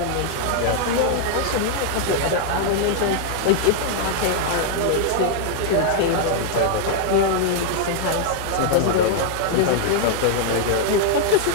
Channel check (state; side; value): different; both; correlation 0.00